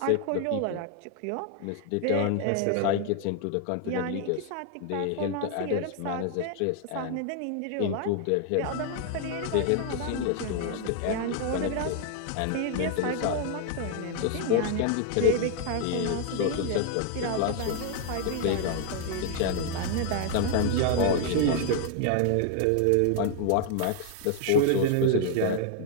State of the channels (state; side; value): different; both; correlation 0.00